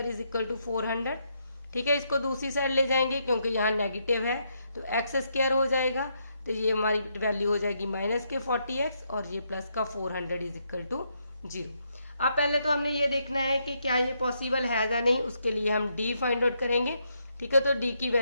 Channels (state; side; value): inverted; both; correlation -0.77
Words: is equal to 400। ठीक है, इसको दूसरी साइड ले जाएंगे क्योंकि यहाँ नेगेटिव है तो x² हो जाएगा, तो ये हमारी वैल्यू हो जाएगी -40x और ये प्लस का 400 इज इक्वल टू 0। अब पहले तो हमने ये देखना है कि क्या ये पॉसिबल है या नहीं, उसके लिए हम d फाइंड आउट करेंगे। ठीक है, तो d की